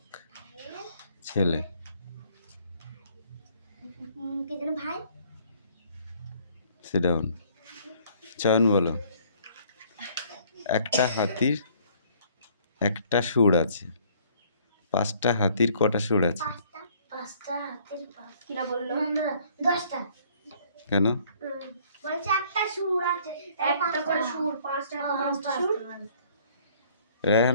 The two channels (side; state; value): both; inverted; correlation -0.60